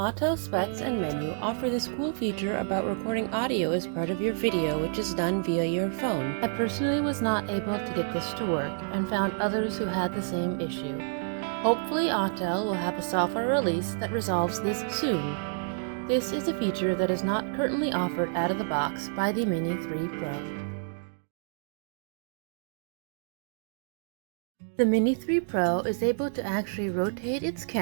Specs and Menu offer this cool feature about recording audio as part of your video, which is done via your phone. I personally was not able to get this to work and found others who had the same issue. Hopefully Autel will have a software release that resolves this soon. This is a feature that is not currently offered out of the box by the Mini 3 Pro. The Mini 3 Pro is able to actually rotate its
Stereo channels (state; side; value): silent; left; digital silence